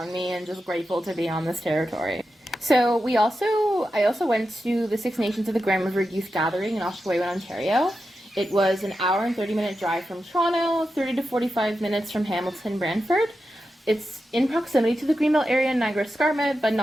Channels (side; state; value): both; normal; correlation 0.90